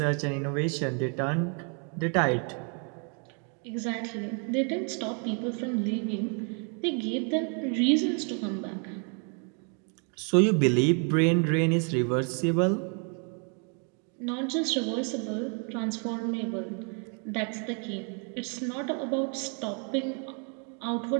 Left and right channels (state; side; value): quieter; left; 39.5 dB